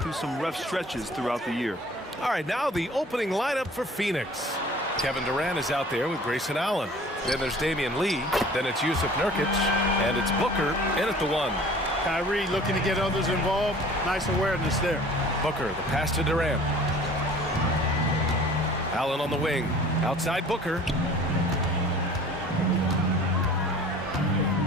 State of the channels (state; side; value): normal; both; correlation 0.47